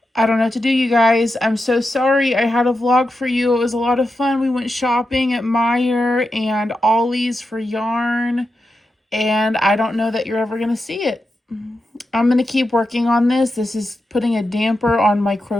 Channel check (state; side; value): normal; both; correlation 0.89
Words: I don't know what to do, you guys. I'm so sorry. I had a vlog for you. It was a lot of fun. We went shopping at Meijer and Ollie's for yarn, and I don't know that you're ever going to see it. I'm going to keep working on this. This is putting a damper on my